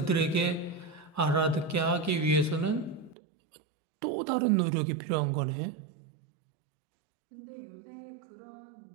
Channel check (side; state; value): left; drops out; at 3.2 s